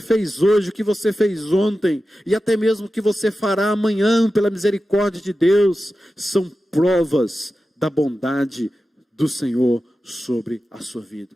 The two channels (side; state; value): both; normal; correlation 0.93